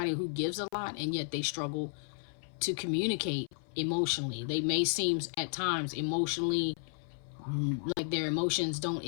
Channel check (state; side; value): silent; right; 56 dB below the other